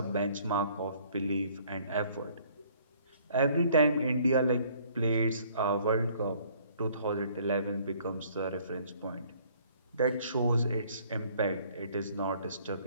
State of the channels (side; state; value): both; inverted; correlation -0.59